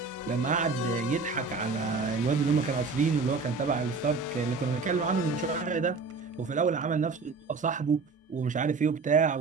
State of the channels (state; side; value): quieter; left; 4.4 dB